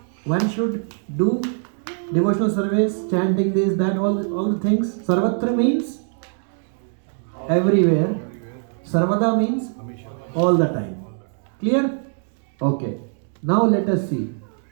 One should do devotional service, chanting this, that, all the things. Sarvatra means everywhere. Sarvada means all the time. Clear? Okay. Now let us see.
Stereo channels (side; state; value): left; silent; 59 dB below the other